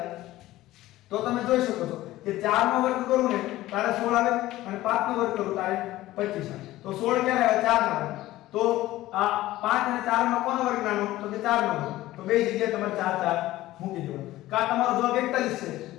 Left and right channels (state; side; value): quieter; right; 16.2 dB